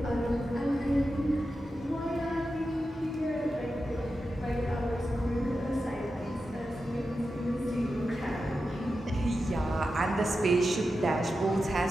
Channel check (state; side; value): normal; both; correlation 0.90